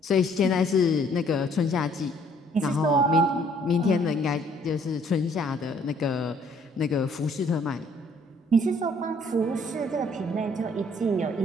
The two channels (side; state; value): both; normal; correlation 0.62